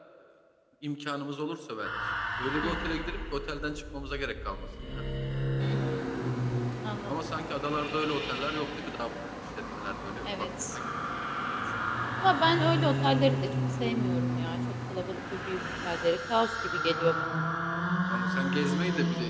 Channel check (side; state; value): both; identical; correlation 1.00